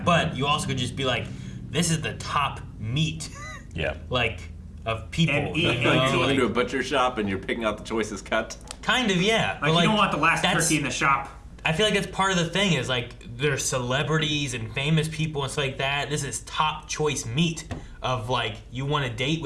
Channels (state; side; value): identical; both; correlation 1.00